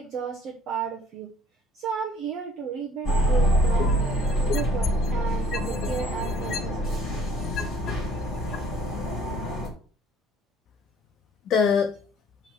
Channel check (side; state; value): both; normal; correlation 0.57